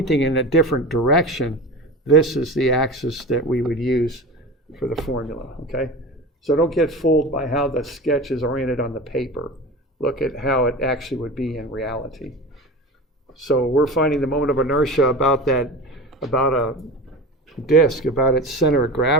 in a different direction, this is the axis that we would use for the formula, okay? So don't get fooled by how the sketch is oriented on the paper. Look at how it actually would be in reality. So we're finding the moment of inertia about a disk, about its center of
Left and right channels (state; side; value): normal; both; correlation 0.31